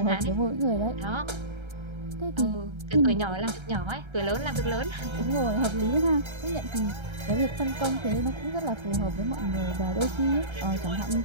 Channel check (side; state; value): left; late; 1.3 ms